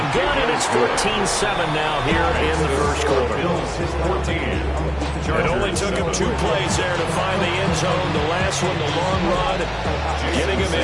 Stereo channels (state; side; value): identical; both; correlation 1.00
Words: good, and it's 14-7 now here in the first quarter. It only took him 2 plays there to find the end zone. The last one, the long run, getting him